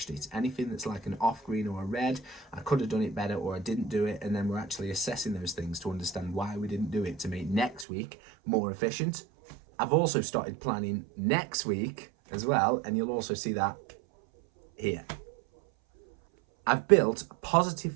it. Anything that's like an off green or a red, I could have done it better or I didn't do it, and then we're actually assessing those things to understand why we didn't do it to make next week more efficient. I've also started planning next week as well, and you'll also see that here. I've built positive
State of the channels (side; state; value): left; drops out; at 7.9 s